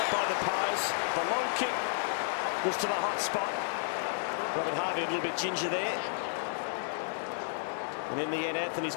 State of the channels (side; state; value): right; silent; digital silence